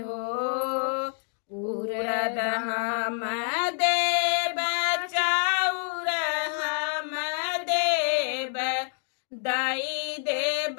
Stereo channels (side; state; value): right; silent; 60 dB below the other